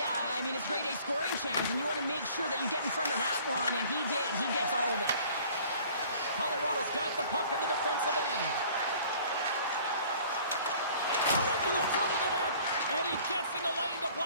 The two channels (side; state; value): both; inverted; correlation -0.51